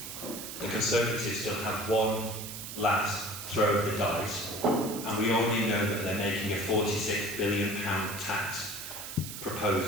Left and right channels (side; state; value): right; noise; hiss, 9 dB below the sound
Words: The Conservatives still have one last throw of the dice, and we already know that they're making a £46 billion tax